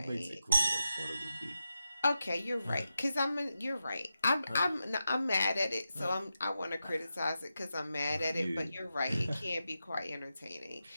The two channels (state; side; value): inverted; both; correlation -0.90